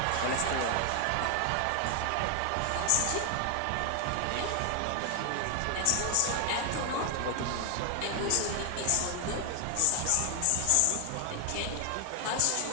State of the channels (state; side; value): different; both; correlation 0.00